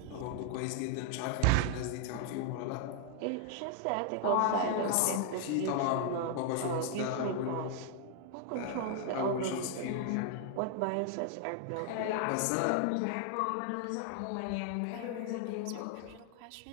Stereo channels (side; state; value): both; different; correlation 0.00